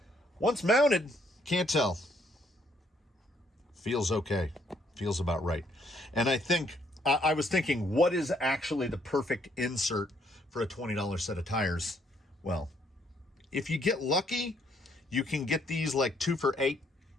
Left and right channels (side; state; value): both; normal; correlation 0.69